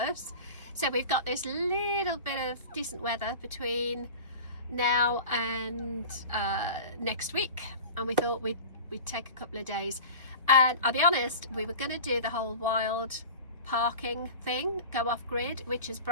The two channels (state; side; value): inverted; both; correlation -0.34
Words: So we've got this little bit of decent weather between now and next week, and we thought we'd take a couple of days. And I'll be honest, we were going to do the whole wild parking thing, go off grid, which is